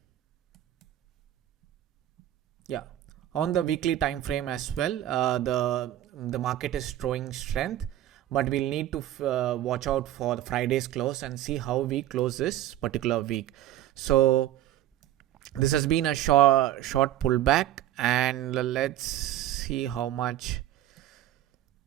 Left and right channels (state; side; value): quieter; left; 13.3 dB